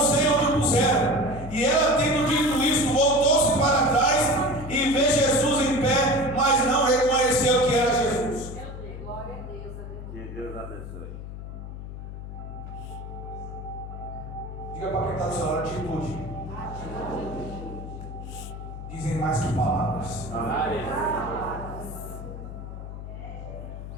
sei onde o puseram. E ela, tendo dito isso, voltou-se para trás e vê Jesus em pé, mas não reconheceu que era Jesus. Glória a Deus. Que Deus abençoe. Diga para quem está do seu lado, atitude. Dizem mais que palavras.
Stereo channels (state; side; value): noise; left; hum, 10 dB below the sound